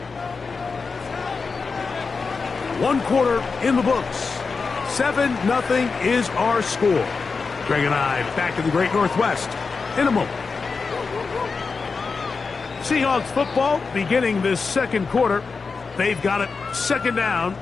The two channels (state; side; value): quieter; right; 4.7 dB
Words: One quarter in the books. 7-0 is our score. Greg and I back in the Great Northwest in a moment. Seahawks football beginning this second quarter. They've got it second down